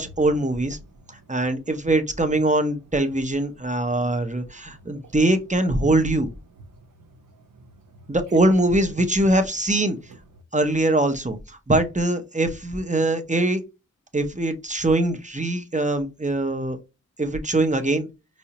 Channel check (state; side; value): normal; both; correlation 0.59